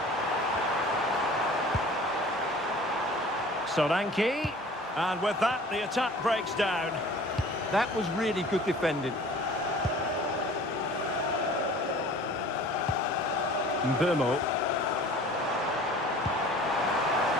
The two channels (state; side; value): normal; both; correlation 0.46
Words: Solanke. And with that, the attack breaks down. That was really good defending. Mbeumo.